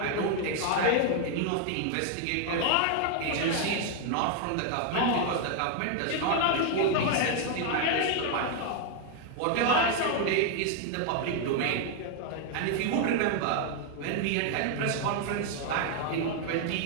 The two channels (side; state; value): both; different; correlation 0.00